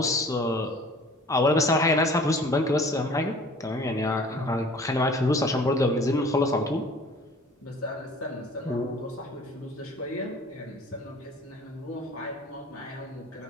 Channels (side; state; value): both; normal; correlation 0.49